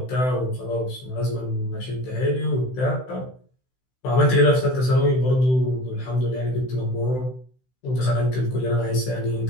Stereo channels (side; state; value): right; late; 16 ms